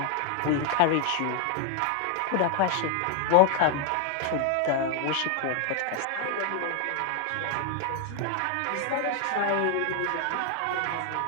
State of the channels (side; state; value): both; different; correlation 0.01